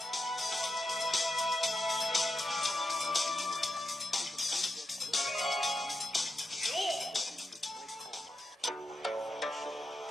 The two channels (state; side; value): normal; both; correlation 0.88